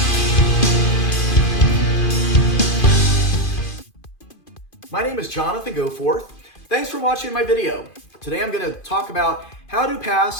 My name is Jonathan Goforth. Thanks for watching my video. Today I'm going to talk about how to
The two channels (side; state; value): right; late; 2.5 ms